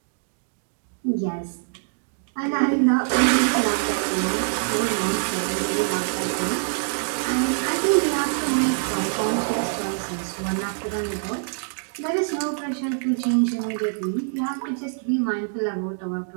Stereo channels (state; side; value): silent; left; digital silence